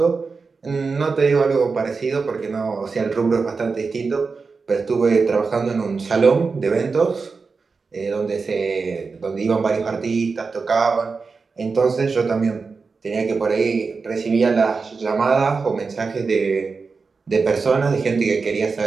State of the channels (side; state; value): left; quieter; 4.6 dB